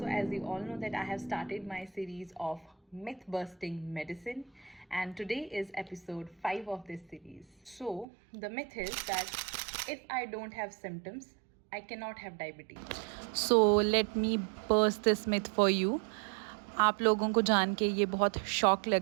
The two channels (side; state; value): left; drops out; at 8.1 s